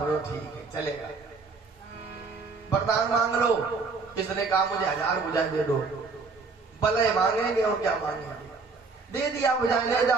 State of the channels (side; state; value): left; quieter; 4.3 dB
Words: ठीक है चलेगा। वरदान मांग लो। किसने कहा मुझे 1000 भुजाएं दे दो। भले मांगेंगे और क्या मांगेंगे, दे दिया भुजाएं, ले